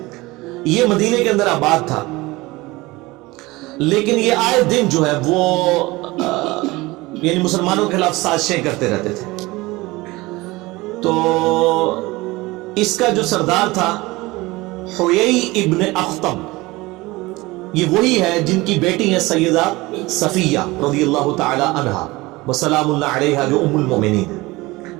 یہ مدینے کے اندر آباد تھا. لیکن یہ آئے دن جو ہے وہ یعنی مسلمانوں کے خلاف سازشیں کرتے رہتے تھے. تو اس کا جو سردار تھا حیی ابن اخطب، یہ وہی ہے جن کی بیٹی ہے سیدہ صفیہ رضی اللہ تعالی عنہا وسلام اللہ علیہا، جو ام المؤمنین ہے.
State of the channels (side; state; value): left; quieter; 21.2 dB